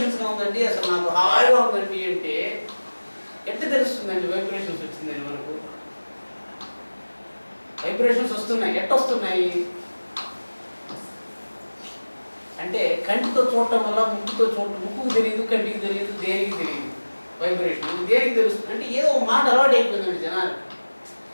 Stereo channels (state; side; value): inverted; both; correlation -1.00